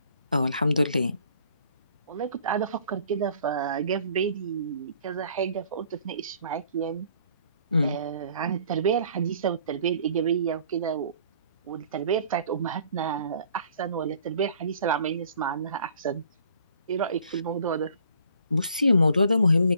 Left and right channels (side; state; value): both; inverted; correlation -0.57